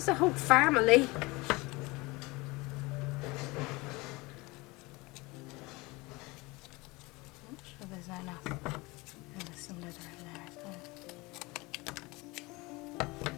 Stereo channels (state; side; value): quieter; right; 23.6 dB